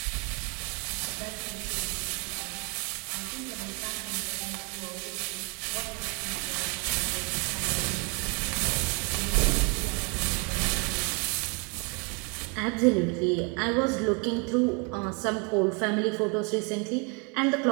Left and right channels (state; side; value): quieter; left; 33.6 dB